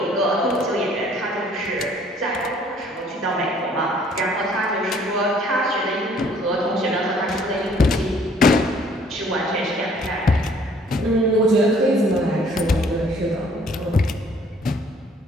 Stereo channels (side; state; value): both; normal; correlation 0.59